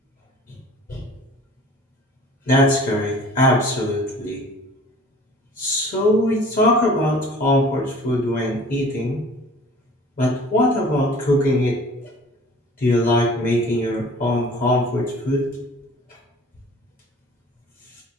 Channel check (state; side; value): normal; both; correlation 0.47